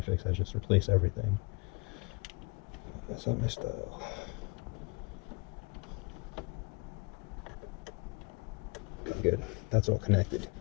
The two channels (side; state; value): right; quieter; 28.5 dB